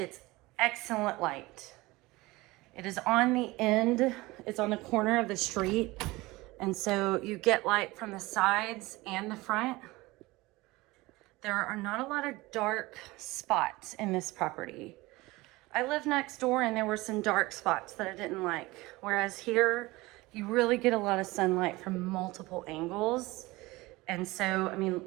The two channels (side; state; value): left; quieter; 21.0 dB